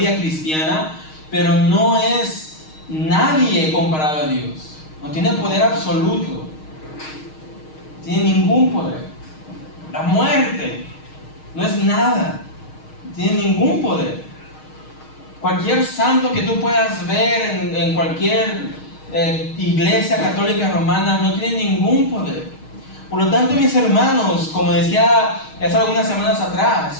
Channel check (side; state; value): right; late; 6.4 ms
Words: cristiana, pero no es nadie comparado a Dios. No tiene poder absoluto. No tiene ningún poder. La muerte no es nada. No tiene ningún poder. Cualquier santo que tú puedas ver en cualquier iglesia católica romana no tiene ningún poder. Por lo tanto, mis hermanos, como decía hace algunas semanas